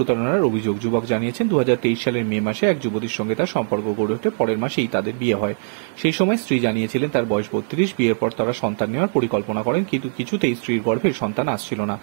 অভিযোগ? যুবক জানিয়েছেন, 2023 সালের মে মাসে এক যুবতীর সঙ্গে তার সম্পর্ক গড়ে ওঠে। পরের মাসেই তাদের বিয়ে হয়। সেই সময় স্ত্রী জানিয়েছিলেন তার বয়স 32। বিয়ের পর তারা সন্তান নেওয়ার পরিকল্পনা করেন, কিন্তু কিছুতেই স্ত্রীর গর্ভে সন্তান আসছিল না।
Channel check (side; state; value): left; silent; digital silence